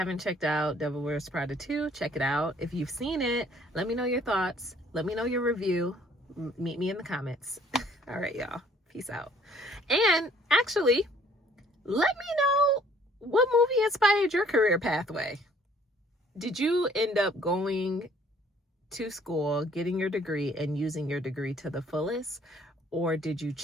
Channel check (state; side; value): normal; both; correlation 0.59